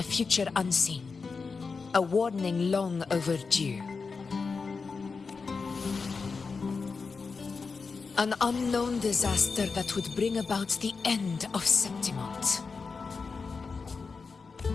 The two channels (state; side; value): quieter; right; 4.8 dB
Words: future unseen, a warning long overdue. An unknown disaster that would bring about the end of Septimont.